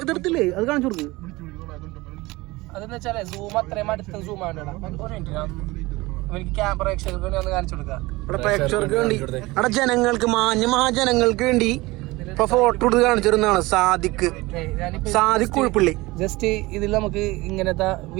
ഇതെടുത്തില്ലേ അത് കാണിച്ചു കൊടുക്ക്. അതെന്ന് വെച്ചാലേ സൂം അത്രയും അടുത്ത് സൂം ആവണ്ടടാ. ഒരു മിനിറ്റ് എനിക്ക് ക്യാമറ പ്രേക്ഷകർക്ക് വേണ്ടി ഒന്ന് കാണിച്ചു കൊടുക്കാം. ഇവിടെ പ്രേക്ഷകർക്ക് വേണ്ടി അവിടെ ജനങ്ങൾക്ക് മഹാജനങ്ങൾക്ക് വേണ്ടി ഇപ്പൊ ഫോട്ടോ എടുത്ത് കാണിച്ചിരുന്നതാണ് സാദിഖ് കുഴപ്പള്ളി. ജസ്റ്റ് ഇതിൽ നമുക്ക് ഇങ്ങനത്തെ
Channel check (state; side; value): quieter; left; 21.1 dB